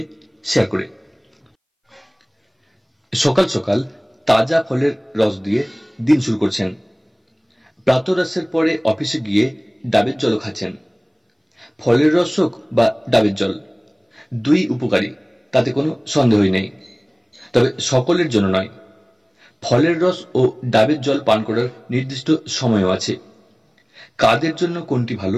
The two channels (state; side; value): identical; both; correlation 1.00